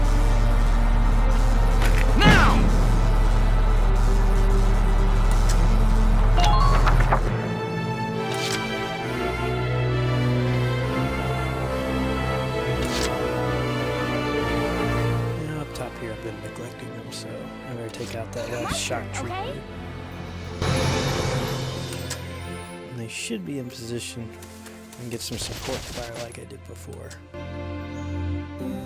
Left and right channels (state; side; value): identical; both; correlation 1.00